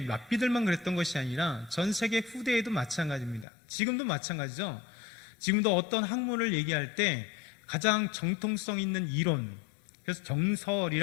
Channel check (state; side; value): drops out; right; at 3.5 s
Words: 랍비들만 그랬던 것이 아니라 전 세계 후대에도 마찬가지입니다. 지금도 마찬가지죠. 지금도 어떤 학문을 얘기할 때 가장 정통성 있는 이론, 그래서